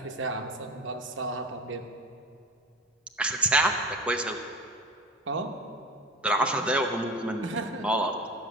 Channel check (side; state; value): both; normal; correlation 0.34